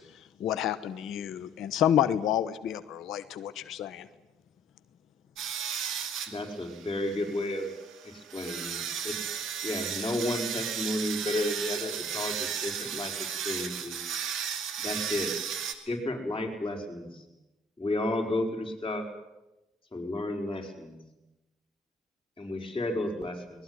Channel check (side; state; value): both; normal; correlation 0.58